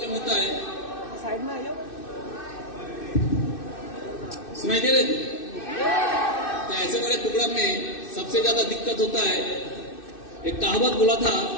होता है, साइड में आइए, सुनाई दे रहे थे? तो ऐसे बड़े प्रोग्राम में सबसे ज्यादा दिक्कत होता है। एक कहावत बोला था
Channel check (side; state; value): right; late; 2.6 ms